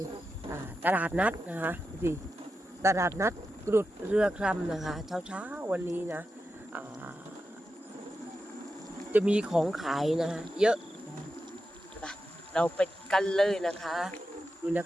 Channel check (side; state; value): both; normal; correlation 0.90